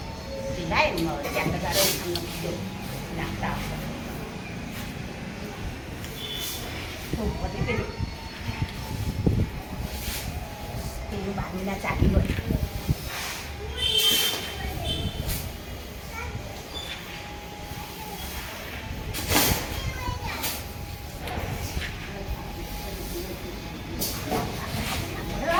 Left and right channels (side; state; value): both; identical; correlation 1.00